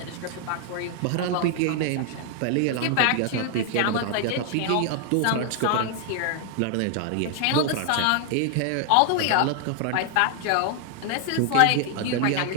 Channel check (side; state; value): both; different; correlation 0.00